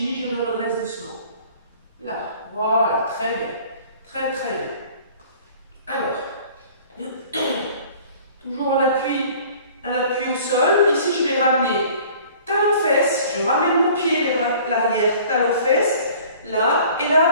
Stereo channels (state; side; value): inverted; both; correlation -0.50